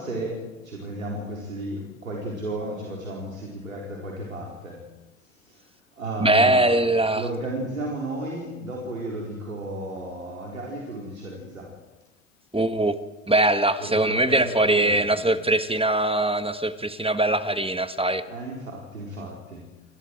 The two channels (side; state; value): both; normal; correlation 0.25